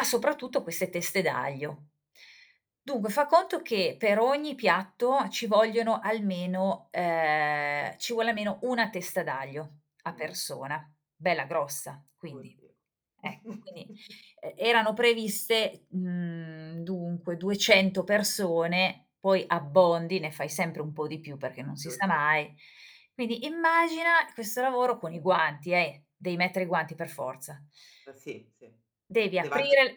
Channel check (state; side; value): identical; both; correlation 1.00